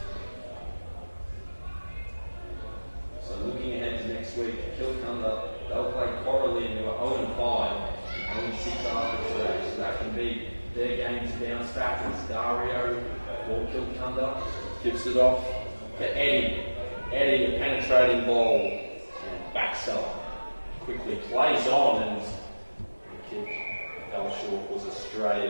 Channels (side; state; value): both; inverted; correlation -1.00